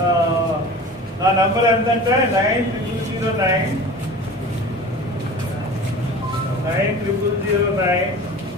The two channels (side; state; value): both; normal; correlation 0.38